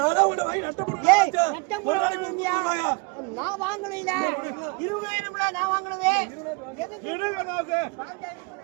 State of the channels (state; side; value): quieter; left; 30.4 dB